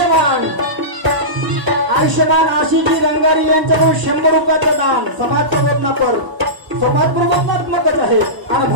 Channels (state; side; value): late; left; 1.0 ms